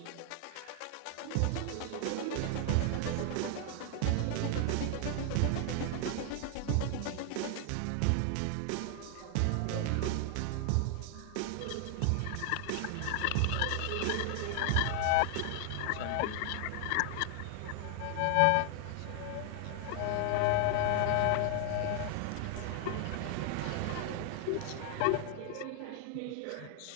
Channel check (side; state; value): both; different; correlation 0.00